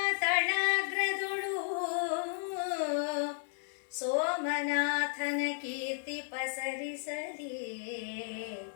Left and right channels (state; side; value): silent; right; 55 dB below the other